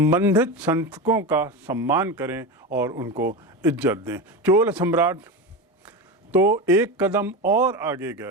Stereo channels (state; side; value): normal; both; correlation 0.21